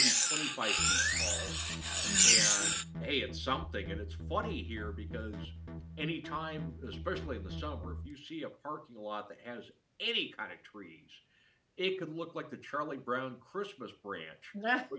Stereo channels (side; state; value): both; identical; correlation 1.00